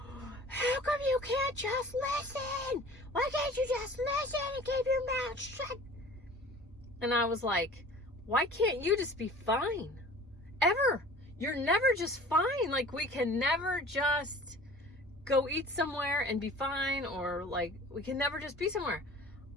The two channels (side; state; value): both; normal; correlation 0.44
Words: how come you can't just listen? Why can't you just listen and keep your mouth shut? And I was like, why can't you just be fine? Ever. You're never just fine. Like, we can never just go eat somewhere and be fine, or like, we can never just be somewhere.